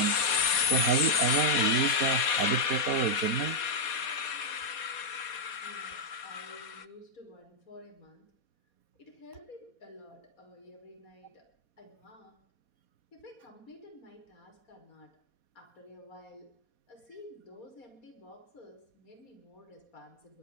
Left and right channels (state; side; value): late; right; 4.2 ms